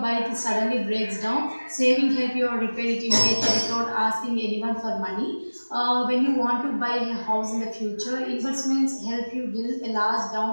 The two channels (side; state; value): both; inverted; correlation -1.00